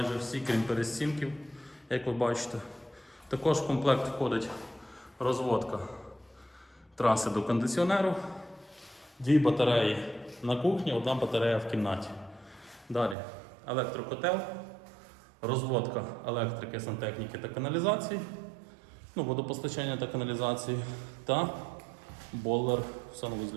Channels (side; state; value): left; drops out; at 13.2 s